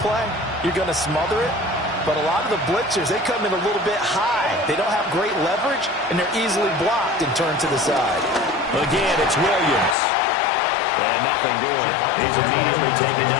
play, you're going to smother it. But a lot of the blitzers, they come in a little bit high. They don't have great leverage, and they're easily blocked and turned to the side. Again, it's Williams. And nothing doing. He's immediately taken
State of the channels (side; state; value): right; drops out; at 10.0 s